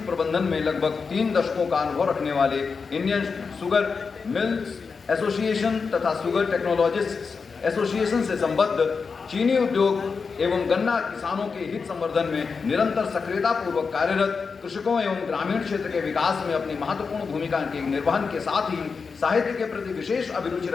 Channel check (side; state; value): right; quieter; 5.1 dB